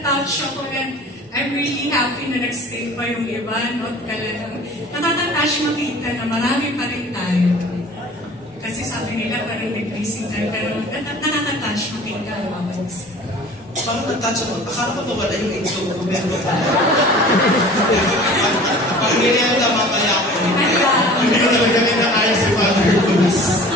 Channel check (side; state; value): both; normal; correlation 0.44